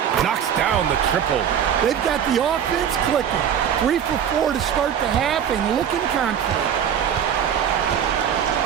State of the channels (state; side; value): quieter; left; 8.7 dB